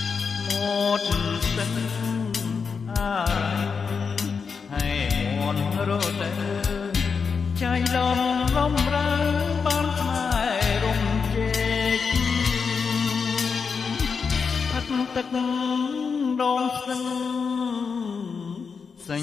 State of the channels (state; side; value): quieter; right; 5.6 dB